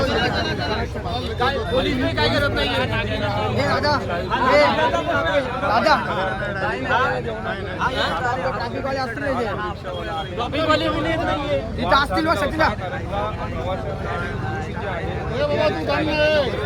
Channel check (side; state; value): both; identical; correlation 1.00